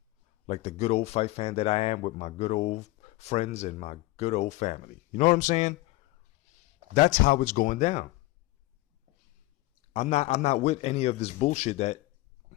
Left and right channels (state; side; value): quieter; right; 19.3 dB